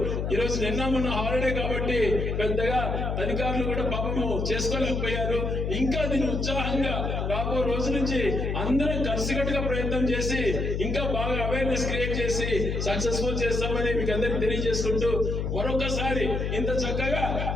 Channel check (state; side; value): noise; left; hum, 1 dB below the sound